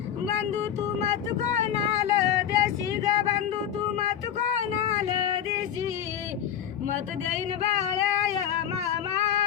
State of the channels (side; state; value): right; quieter; 9.7 dB